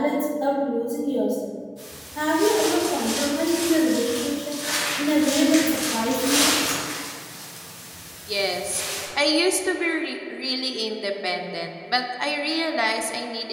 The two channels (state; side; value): identical; both; correlation 1.00